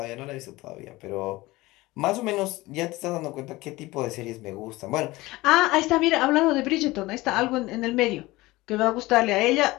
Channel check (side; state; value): right; quieter; 19.9 dB